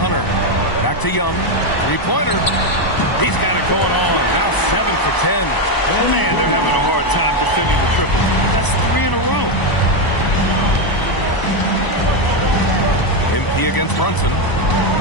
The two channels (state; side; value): late; right; 1.0 ms